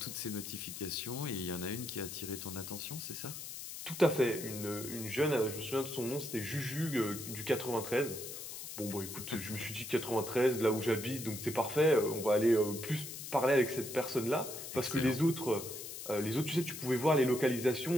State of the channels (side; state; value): left; noise; hiss, 9 dB below the sound